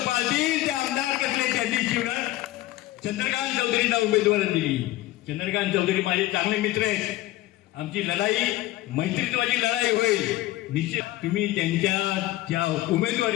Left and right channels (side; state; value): right; quieter; 17.0 dB